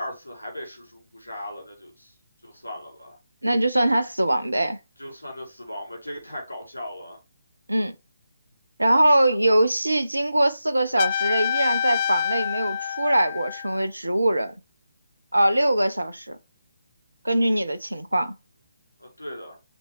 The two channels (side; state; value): both; inverted; correlation -0.91